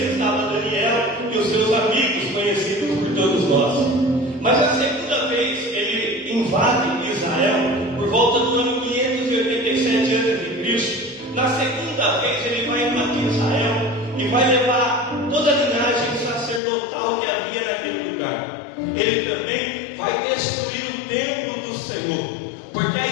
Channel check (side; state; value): right; drops out; at 16.6 s